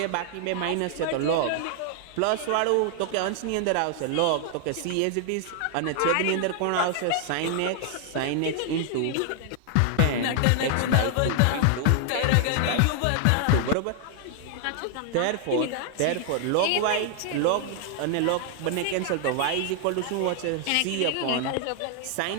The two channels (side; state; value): both; different; correlation 0.00